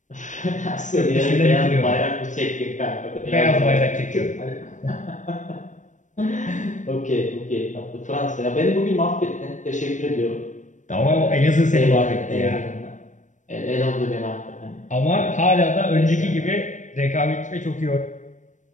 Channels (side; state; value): right; late; 0.36 ms